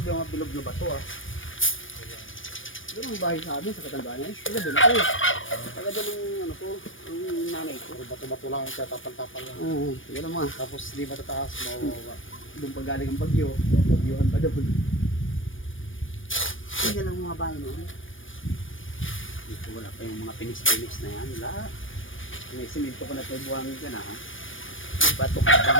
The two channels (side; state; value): right; late; 0.57 ms